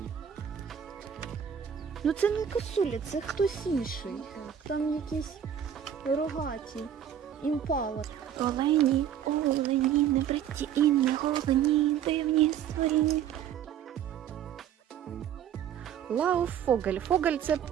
Ну це не косуля, це хтось інший. Там якісь рогаті. Імпала. Олені, не бриті і не голені, дивні створіння. Лауфогель. Фогель – це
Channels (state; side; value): quieter; left; 9.3 dB